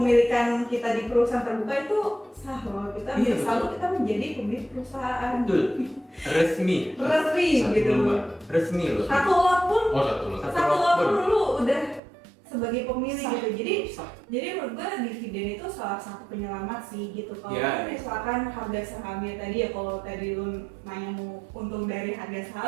kita di perusahaan terbuka itu sah loh, kita selalu kita menjadi pemilik perusahaan. Betul. Resmi gitu. Resmi loh. Satu lot pun lu udah sebagai pemilik gitu. Jadi menurut gue dividen itu salah satu penyelamat sih gitu. Kalau misalkan harga sahamnya tadi ya, kalau tadi lu nanya mau untung dari harga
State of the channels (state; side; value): drops out; left; at 12.0 s